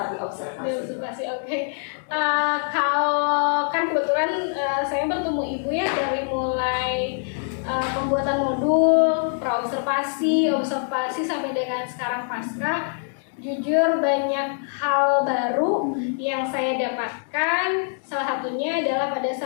diobservasi. Oke. Kalau kan kebetulan saya bertemu Ibu ya dari mulai pembuatan modul, pra-observasi, observasi sampai dengan sekarang pasca. Jujur banyak hal baru yang saya dapatkan. Salah satunya adalah pada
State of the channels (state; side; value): silent; right; 63 dB below the other